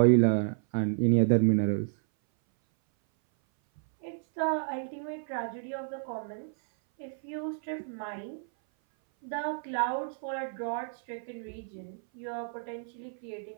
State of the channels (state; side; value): silent; left; 57 dB below the other